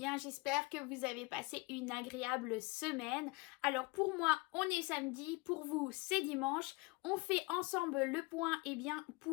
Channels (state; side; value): quieter; right; 25.7 dB